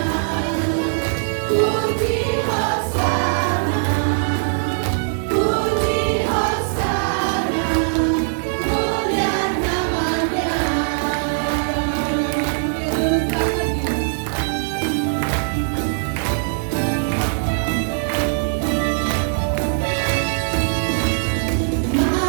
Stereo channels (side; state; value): left; silent; digital silence